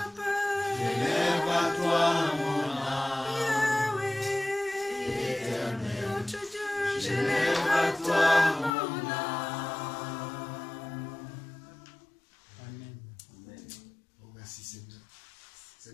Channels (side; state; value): right; drops out; at 8.8 s